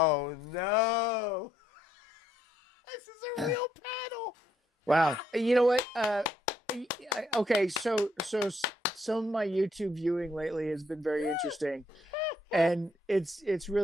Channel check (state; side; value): normal; both; correlation 0.72